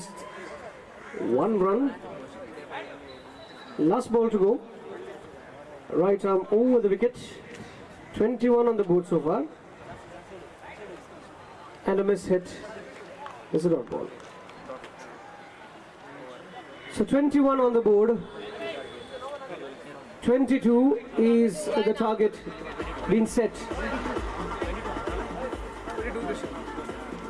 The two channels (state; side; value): identical; both; correlation 1.00